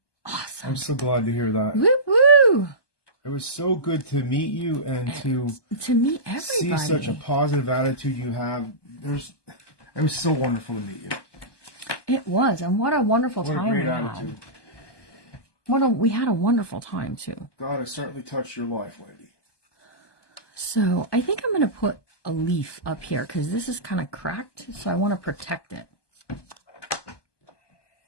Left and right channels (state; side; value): late; right; 1.2 ms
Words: awesome. I'm so glad to hear that. Woo woo! It was so good to meet you and to meet everybody. see such a positive attitude you have. It was so wonderful to meet you. It was, and what a wonderful What a time great we attitude. had. We had a wonderful time too. God has certainly touched your life, Wendy. So I think I'm going to put a leaf up here because this is kind of cracked, so I want to protect it.